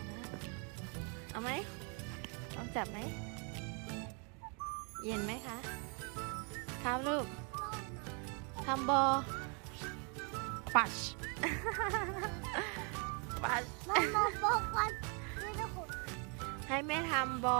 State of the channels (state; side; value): quieter; left; 36.0 dB